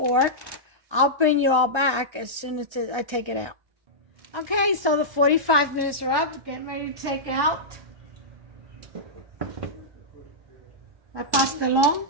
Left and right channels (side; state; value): left; late; 1.2 ms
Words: I'll bring you all back as soon as I take it out. Okay, so the 45 minutes are up. Getting ready to take out my Pastelon.